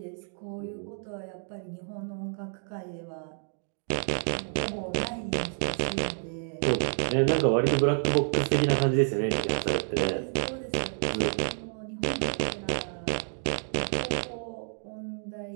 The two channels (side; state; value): left; silent; 58 dB below the other